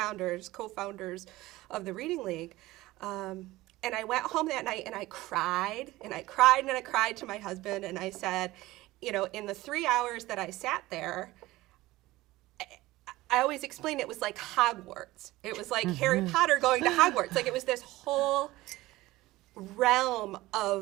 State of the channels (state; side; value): quieter; left; 18.2 dB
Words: of the Reading League. And I went home that night and I cried to my husband, and I said, you know, in the 3 hours that I sat there, I always explained it was like Hogwarts. It was like Harry Potter going to Hogwarts. Like, it was this whole realm